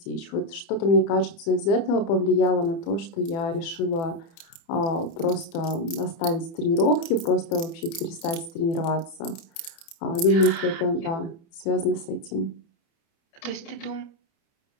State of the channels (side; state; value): right; late; 30 ms